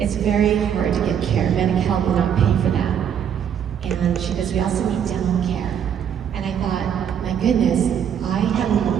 very hard to get care. Medi-Cal will not pay for that. And she goes, we also need dental care. And I thought, my goodness, I have a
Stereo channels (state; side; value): quieter; left; 8.6 dB